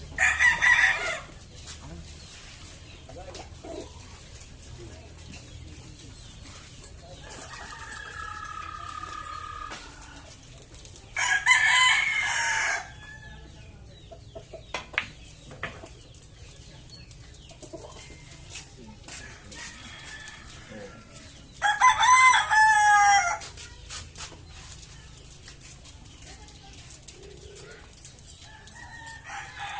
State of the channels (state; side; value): identical; both; correlation 1.00